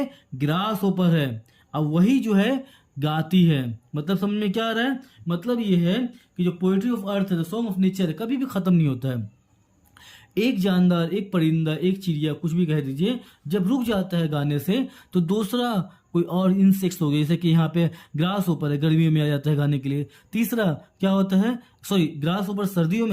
ग्रास होपर है। अब वही जो है गाती है। मतलब समझ में क्या आ रहा है, मतलब ये है कि जो पोएट्री ऑफ अर्थ है, द सॉन्ग ऑफ नेचर है, कभी भी खत्म नहीं होता है। एक जानदार, एक परिंदा, एक चिड़िया, कुछ भी कह दीजिए, जब रुक जाता है गाने से तो दूसरा कोई और इंसेक्ट्स हो गए, जैसे कि यहाँ पे ग्रास ऊपर है, गर्मियों में आ जाता है गाने के लिए। तीसरा क्या होता है, सॉरी, ग्रास ऊपर सर्दियों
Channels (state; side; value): identical; both; correlation 1.00